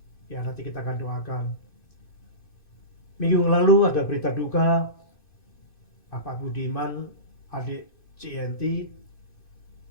Ya nanti kita akan doakan. Minggu lalu ada berita duka, Bapak Budiman, adik CNT,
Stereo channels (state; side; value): late; right; 2.5 ms